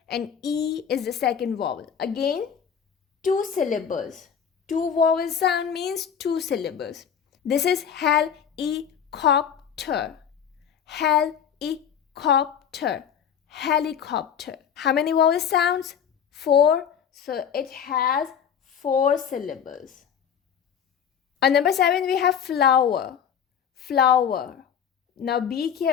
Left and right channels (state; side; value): quieter; right; 8.0 dB